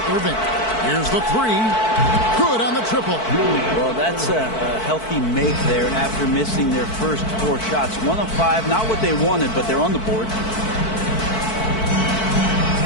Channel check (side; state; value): right; late; 4.5 ms